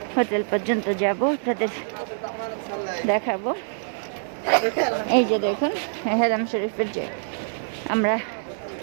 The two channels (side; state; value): left; silent; 62 dB below the other